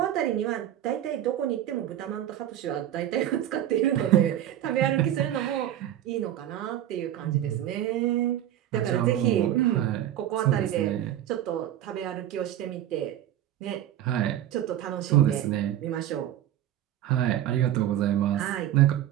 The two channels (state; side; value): quieter; left; 12.0 dB